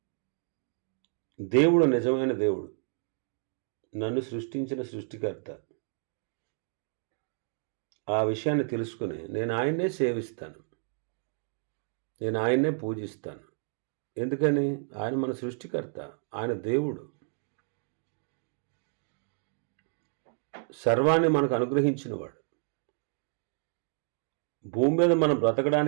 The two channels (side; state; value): left; silent; 57 dB below the other